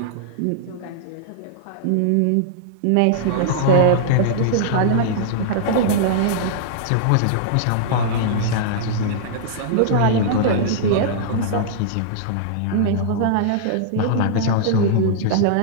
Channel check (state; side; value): different; both; correlation -0.02